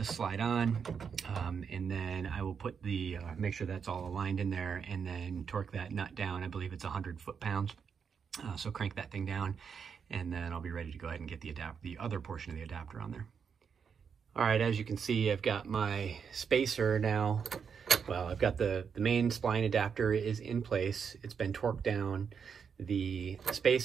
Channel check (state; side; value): quieter; left; 6.6 dB